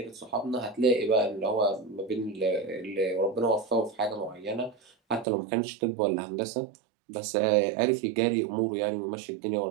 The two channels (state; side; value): drops out; left; at 5.2 s